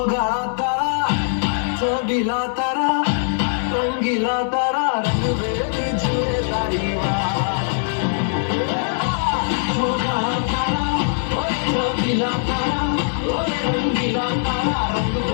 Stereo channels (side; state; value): right; silent; digital silence